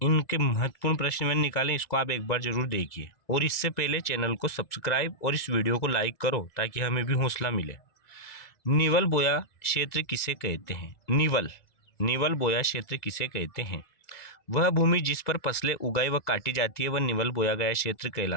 इनके महत्वपूर्ण प्रश्न मैंने निकाले, इसको आप एक बार जरूर देखिए। और इससे पहले चैनल को सब्सक्राइब और इस वीडियो को लाइक करो ताकि हमें भी हौसला मिले। निवल बोया क्षेत्र किसे कहते हैं? निवल बोया क्षेत्र किसे कहते हैं? वह भूमि जिस पर फसलें उगाई व काटी जाती है वह निवल बोया गया क्षेत्र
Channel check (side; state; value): right; late; 2.0 ms